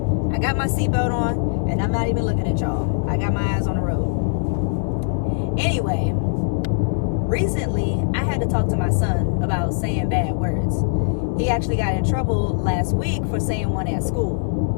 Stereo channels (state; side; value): silent; right; digital silence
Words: I got my seatbelt on, and I'm not even looking at y'all. I got my eyes on the road. Anyway, recently, I had to talk to my son about saying bad words. He actually got in trouble last week for saying one at school